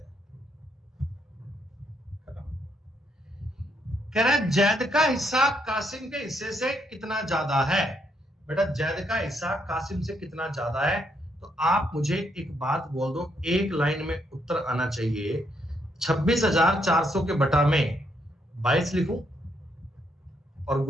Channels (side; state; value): both; normal; correlation 0.75